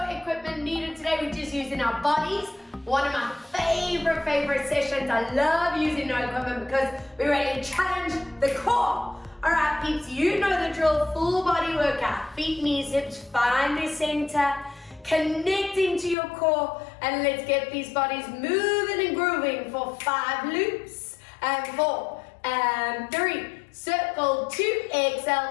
equipment needed today, we're just using our bodies. One of my favorite sessions. I love using no equipment because we really challenge the core. Alright peeps, you know the drill, full body workout. Feet, knees, hips, find the center, connecting to your core, and let's get these bodies moving and grooving for 5 loops, and 4, and 3. Circle 2,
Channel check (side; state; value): right; drops out; at 16.2 s